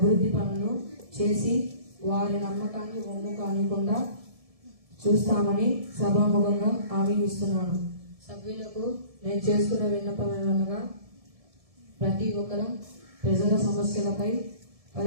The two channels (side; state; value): left; late; 1.7 ms